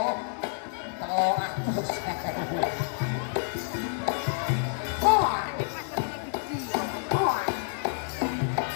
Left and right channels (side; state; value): right; silent; digital silence